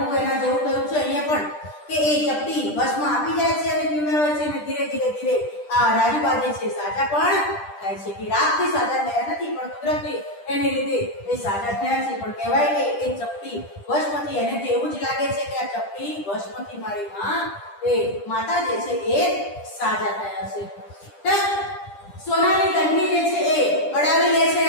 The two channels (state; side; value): late; right; 10 ms